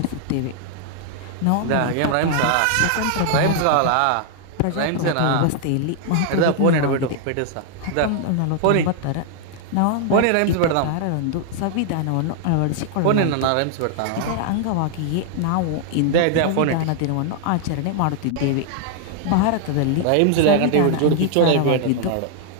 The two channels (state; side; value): different; both; correlation 0.00